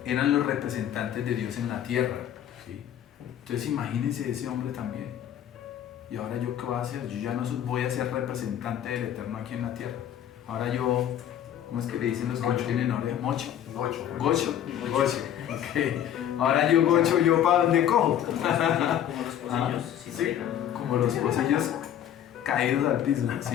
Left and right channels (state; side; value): quieter; right; 10.4 dB